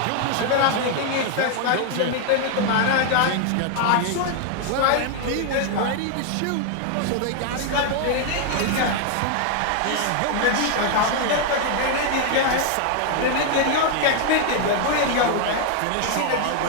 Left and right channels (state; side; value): different; both; correlation 0.00